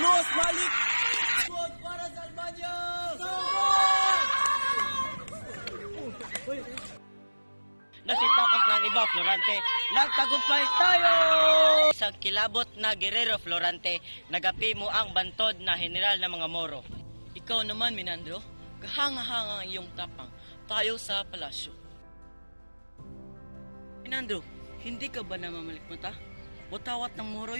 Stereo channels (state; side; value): inverted; both; correlation -1.00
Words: Malik! Squad para sa Albania! Nasitakas ng iba, Florante. Nagtagumpay tayo! Isang kilabot na Guerrero, Florante. Nagapi mo ang bantod na general ng mga Moro. Ikaw naman, Minandro, kahanga-hanga ang iyong tapang. Tayo sa palasyo. Minandro, hindi ka ba namamalikmata? Watawat ng Moro